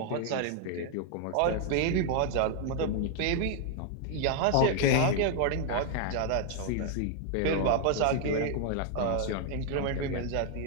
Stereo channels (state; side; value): different; both; correlation 0.00